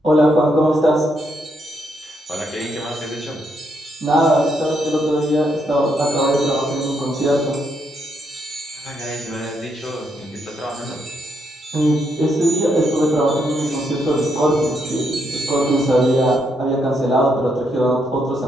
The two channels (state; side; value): normal; both; correlation 0.77